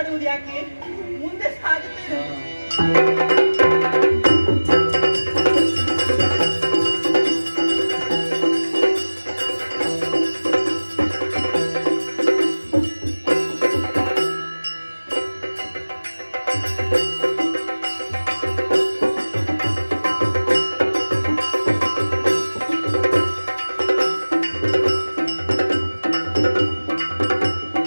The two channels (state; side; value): inverted; both; correlation -1.00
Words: ಯಾಕೆ? ಮುಂದೆ ಸಾಗುತ್ತೇನೆ.